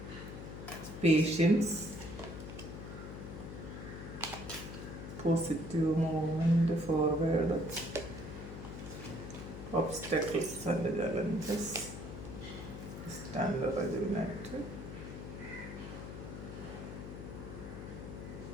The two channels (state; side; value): noise; left; hum, 9 dB below the sound